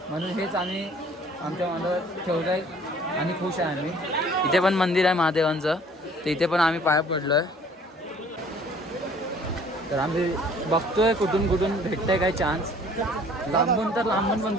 म्हणून हेच आम्ही आमच्या मनात ठेवलं आहे आणि खुश आहे आम्ही. इथे पण मंदिर आहे महादेवांचं. तर इथे पण आम्ही पाया पडलो आहे. तर आम्ही बघतोय कुठून कुठून भेटतंय काय चान्स. लांबून तर लांबून पण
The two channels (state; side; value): normal; both; correlation 0.54